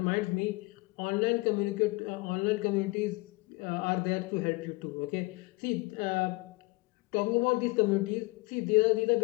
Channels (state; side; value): quieter; right; 24.1 dB